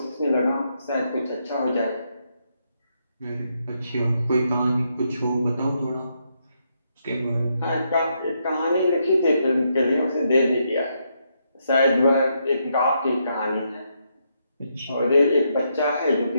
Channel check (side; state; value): both; inverted; correlation -0.79